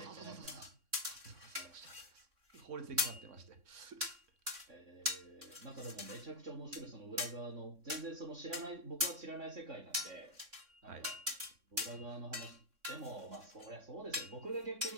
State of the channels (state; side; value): late; left; 3.6 ms